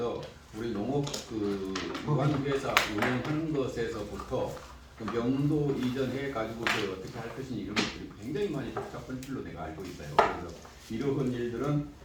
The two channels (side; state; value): both; identical; correlation 1.00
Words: 우리 농업 그 유한회사 운영하는 것에서부터 그 명도 이전해 가지고 어떻게 할 것인지 이런 것들이 굉장히 많이 복잡한 줄로 내가 알고 있어요. 그래서 이러한 일들은